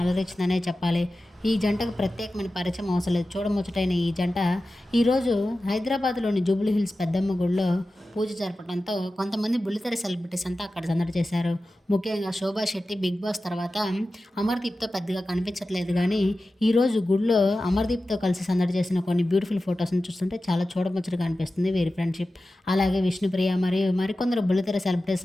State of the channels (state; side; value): normal; both; correlation 0.94